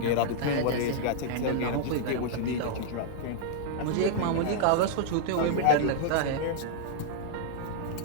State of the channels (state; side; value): different; both; correlation -0.01